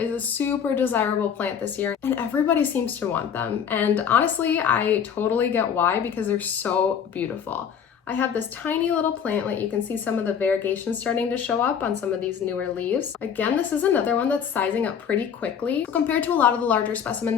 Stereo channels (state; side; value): quieter; right; 7.7 dB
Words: a super desirable plant this year, and everybody seems to want them. And honestly, I totally get why, because they're so beautiful. I have this tiny little plantlet. You can see some of the variegation starting to show up on some of these newer leaves. Again, this is another one that's sizing up pretty quickly. Compared to a lot of the larger specimen